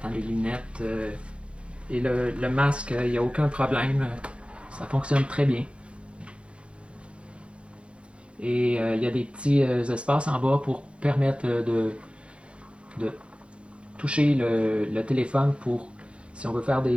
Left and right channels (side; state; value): left; late; 0.059 ms